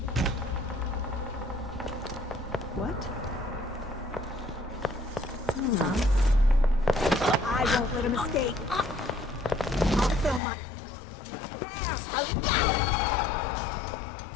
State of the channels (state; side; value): drops out; right; at 10.4 s